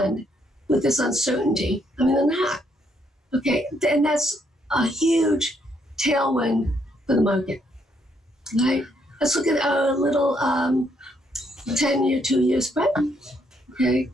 with this uncertainty? I mean, they're not. Okay, and that's a huge tailwind for the market, right? Let's look at a little 10-year, 2-year spread, okay?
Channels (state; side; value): normal; both; correlation 0.72